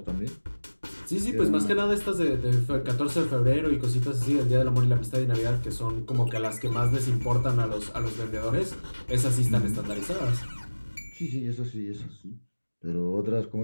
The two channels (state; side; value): inverted; both; correlation -1.00